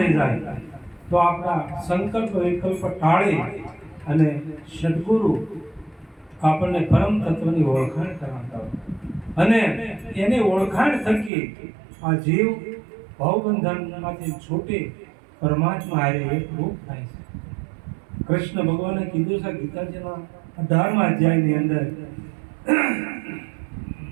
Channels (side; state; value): left; drops out; at 11.3 s